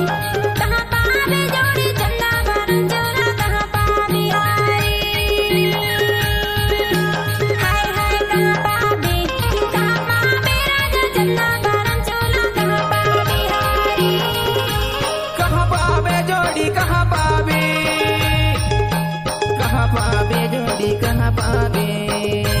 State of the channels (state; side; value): identical; both; correlation 1.00